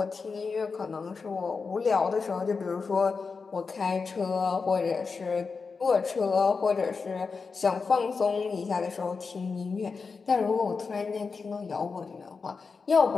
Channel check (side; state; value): right; quieter; 4.9 dB